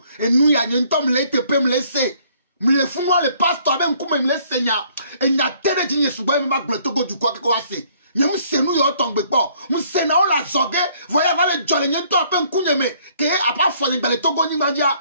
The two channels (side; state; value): both; inverted; correlation -0.62